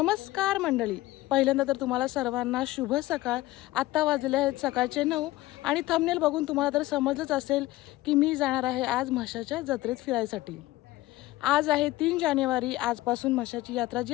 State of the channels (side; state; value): right; quieter; 17.8 dB